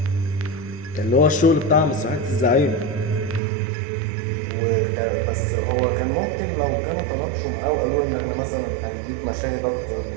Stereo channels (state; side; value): drops out; left; at 3.4 s